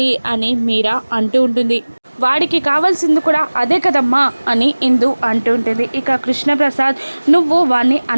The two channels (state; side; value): inverted; both; correlation -1.00